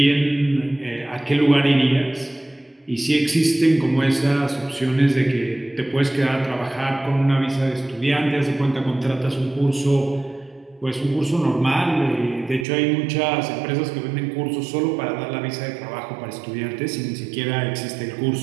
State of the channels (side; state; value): left; drops out; at 12.7 s